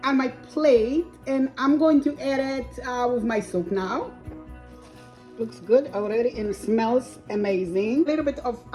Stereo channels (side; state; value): both; identical; correlation 1.00